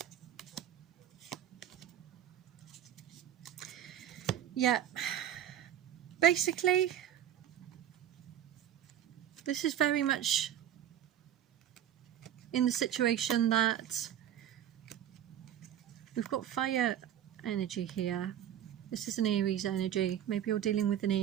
Yeah, basically this is very much in the situation that we've got fire energy here. This is an Aries energy. Maybe you're dealing with an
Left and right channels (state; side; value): quieter; left; 10.7 dB